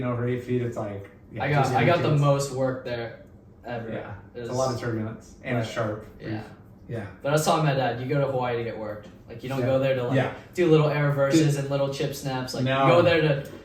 over 8 feet, it's like I got the intense. most work there ever. Yeah, It it's a was- lot of turbulence and it's Right. sharp. Yeah. Yeah. But I was telling my dad, you go to Hawaii to get worked. Like you don't Yeah. go there to like Yeah. do little air reverses and little chip snaps. Like No. you go there to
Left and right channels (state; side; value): identical; both; correlation 1.00